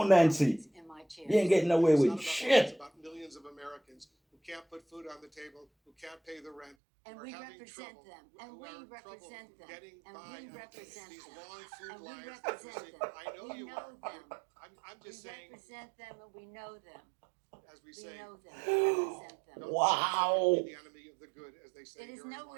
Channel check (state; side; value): drops out; left; at 6.8 s